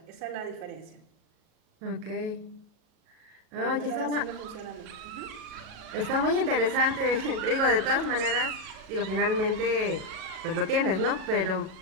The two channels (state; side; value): late; left; 37 ms